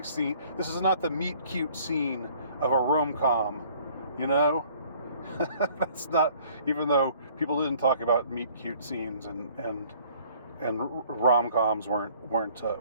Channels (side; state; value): both; inverted; correlation -0.57